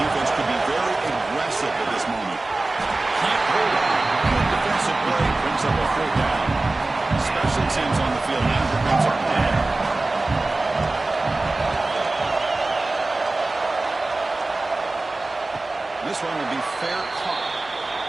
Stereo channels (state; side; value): quieter; left; 3.1 dB